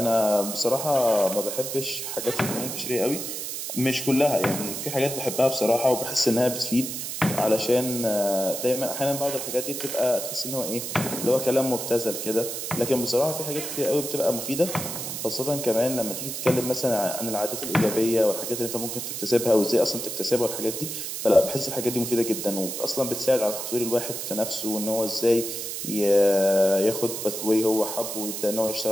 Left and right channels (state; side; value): noise; right; hiss, 5 dB below the sound